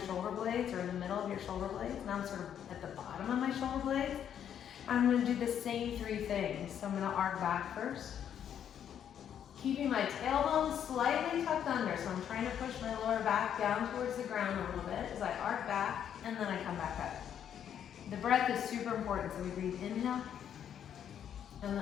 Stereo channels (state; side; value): quieter; right; 9.2 dB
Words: shoulder blades or in the middle of your shoulder blades. Now I'm sort of at the bottom of my shoulder blades. I'm going to do the same 3 things. So I'm going to arc back first, keeping my tailbone slightly tucked under. So I'm trying to push my lower back down towards the ground a little bit as I arc back, and then I come back up. The breath is super important. So we breathe inhale, and